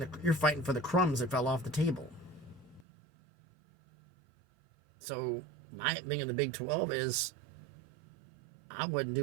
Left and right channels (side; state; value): left; drops out; at 2.9 s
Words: for the crumbs that fell off the table. So my thing in the Big 12 is I wouldn't